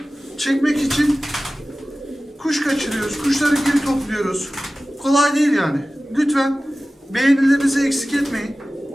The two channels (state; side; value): normal; both; correlation 0.96